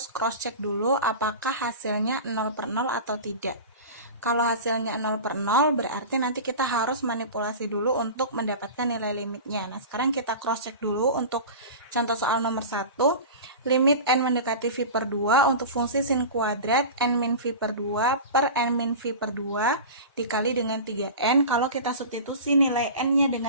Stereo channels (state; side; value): inverted; both; correlation -0.32